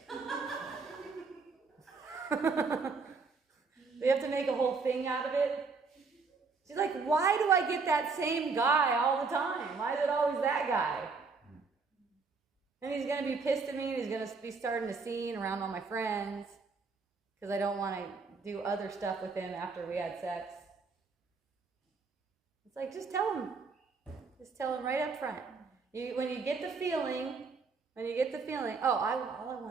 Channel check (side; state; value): left; quieter; 4.6 dB